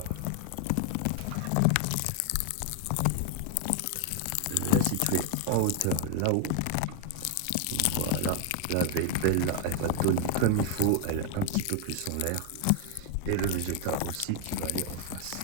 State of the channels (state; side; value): different; both; correlation 0.01